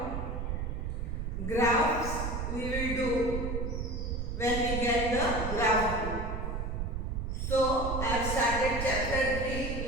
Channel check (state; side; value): noise; right; rumble, 3 dB below the sound